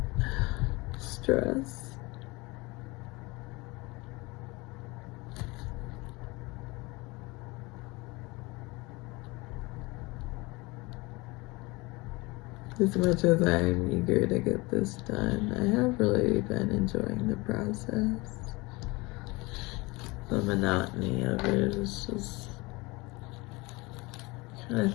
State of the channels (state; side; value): quieter; right; 24.2 dB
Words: stress. As much as I'm eager to get this done, I have really been enjoying the process. The monotony of it is just kind of